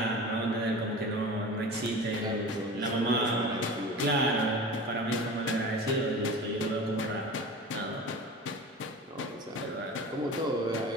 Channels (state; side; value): normal; both; correlation 0.34